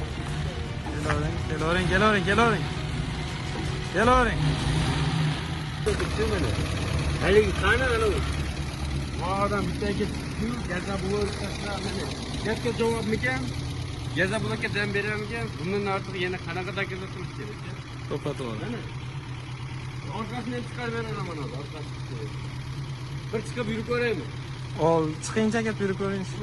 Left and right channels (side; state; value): both; identical; correlation 1.00